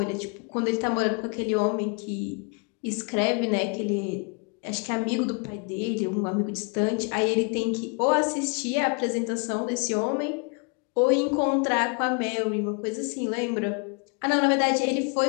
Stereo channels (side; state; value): right; quieter; 35.3 dB